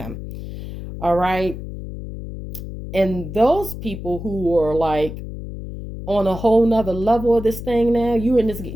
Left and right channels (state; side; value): noise; left; hum, 9 dB below the sound